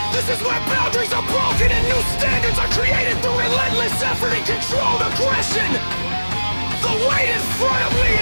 This is where boundaries are broken and new standards are created through relentless effort and controlled aggression. The weight in front of me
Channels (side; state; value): both; inverted; correlation -1.00